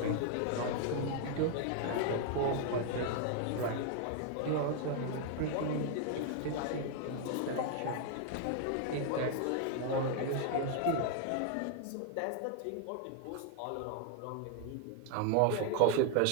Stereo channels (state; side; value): different; both; correlation 0.00